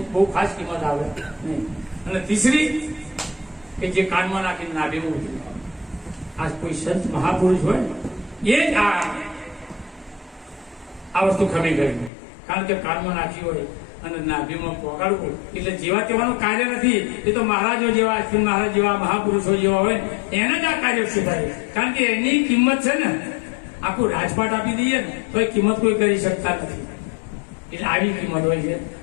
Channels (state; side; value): drops out; right; at 12.1 s